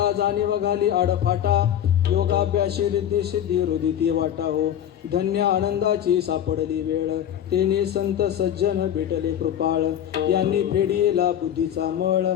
जाणीव घाली आडफाटा योगाभ्यासी रिद्धी सिद्धी रुदिती वाटा हो धन्य आनंदाची सापडली वेळ तेने संत सज्जन भेटले कृपाळ यांनी फेडियेला बुद्धीचा मळ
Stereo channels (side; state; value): right; quieter; 10.3 dB